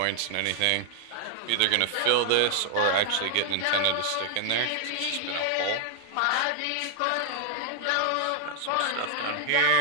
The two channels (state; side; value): different; both; correlation 0.00